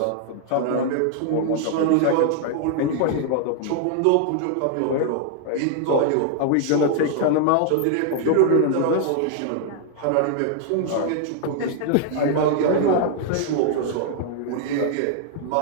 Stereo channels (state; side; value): different; both; correlation 0.00